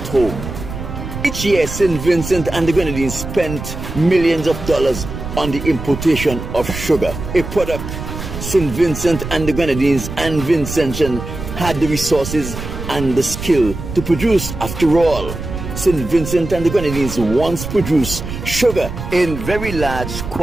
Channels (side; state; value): right; noise; rumble, 8 dB below the sound